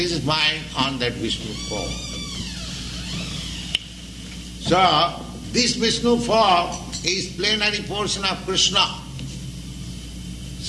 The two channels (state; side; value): identical; both; correlation 1.00